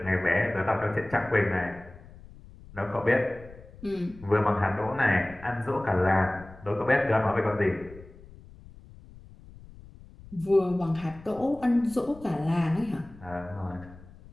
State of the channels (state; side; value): noise; left; rumble, 20 dB below the sound